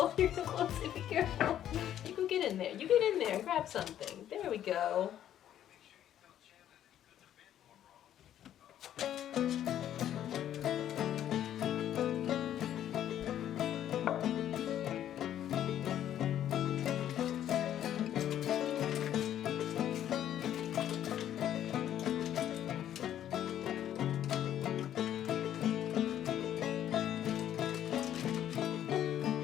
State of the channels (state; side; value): quieter; right; 11.0 dB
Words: you're so close. Be careful. You go get in there. You get in there and grab something. There we go.